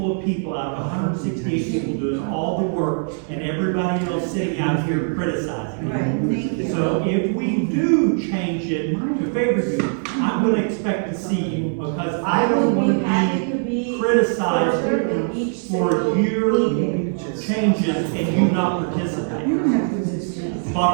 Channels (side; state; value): left; silent; 63 dB below the other